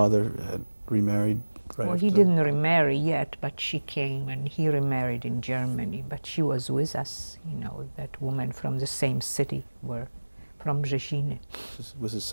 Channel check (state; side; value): inverted; both; correlation -1.00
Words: had remarried right Well, he didn't remarry yet, but she came, and he remarried in Germany, but she was with us, you know, that woman from the same city, from Rzesziny. Was it